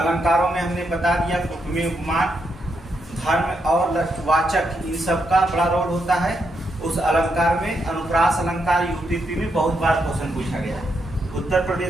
में हमने बता दिया उपमेय, उपमान, धर्म और लक्षवाचक, इन सब का बड़ा रोल होता है। उस अलंकार में अनुप्रास अलंकार यूपीपी में बहुत बार क्वेश्चन पूछा गया है। उत्तर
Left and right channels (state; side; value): normal; both; correlation 0.80